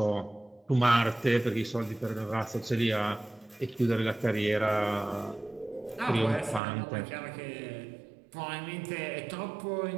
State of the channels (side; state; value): left; drops out; at 6.6 s